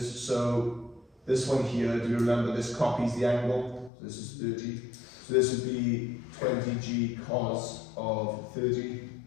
So, this one here, do you remember this copies the angle? So this is 30. So this would be 20g cos of 30.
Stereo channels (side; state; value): right; drops out; at 3.9 s